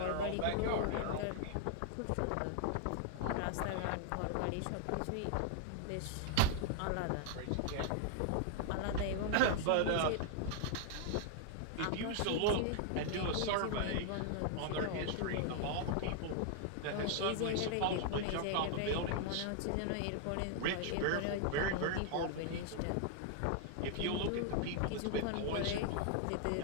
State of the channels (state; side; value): different; both; correlation 0.00